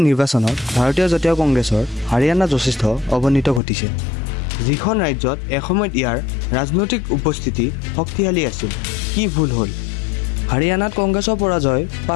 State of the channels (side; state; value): right; drops out; at 3.6 s